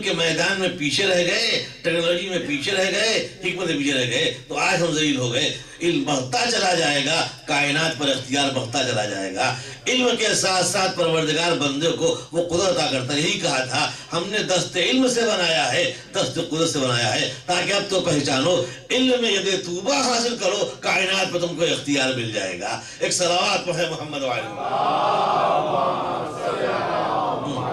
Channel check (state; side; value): identical; both; correlation 1.00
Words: کے میدان میں پیچھے رہ گئے، ٹیکنالوجی میں پیچھے رہ گئے، حکمت میں پیچھے رہ گئے، تو آج ہم ذلیل ہو گئے۔ علم بڑھتا چلا جائے گا، کائنات پر اختیار بڑھتا چلا جائے گا۔ علم کے ساتھ ساتھ پروردگار بندے کو وہ قدرت عطا کرتا ہے۔ یہی کہا تھا ہم نے دست علم سے بنایا ہے، دست قدرت سے بنایا ہے، تاکہ اب تو پہچانو علم میں یدِ توبہ حاصل کرو، کائنات پر تم کو اختیار مل جائے گا۔ ایک صلوات پڑھیں محمد و آل